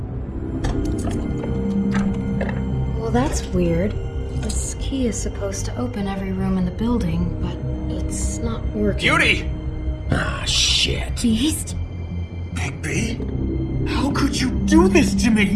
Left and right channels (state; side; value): identical; both; correlation 1.00